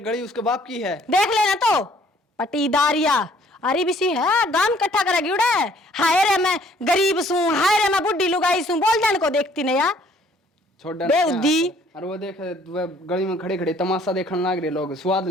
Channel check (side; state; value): both; normal; correlation 0.60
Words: गली उसके बाप की है देख लेना तो पटीदारिया अरे बिसी है गांव इकट्ठा करेगी उड़े हाय रे मैं गरीब सू हाय रे मैं बुढ़ी लुगाई सू बोल जान को देखती नहीं यार छोड़ डन बेउद्दी। और वो देख वह गली में खड़े खड़े तमाशा देखने लग रहे लोग स्वाद